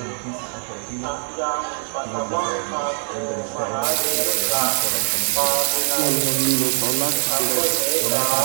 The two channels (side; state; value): left; silent; digital silence